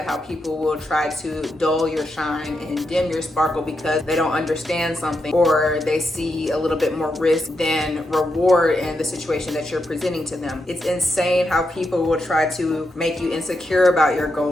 how people will try to dull your shine and dim your sparkle because they don't understand something, or they see a little bit more risk than reward in the situation that you're presenting to them. It's insane how people will try to make you insecure about your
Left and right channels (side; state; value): both; normal; correlation 0.84